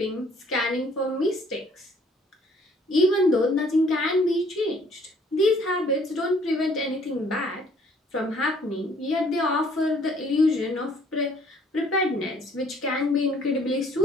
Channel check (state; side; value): normal; both; correlation 0.60